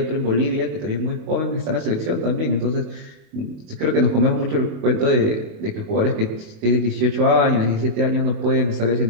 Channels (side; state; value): left; late; 28 ms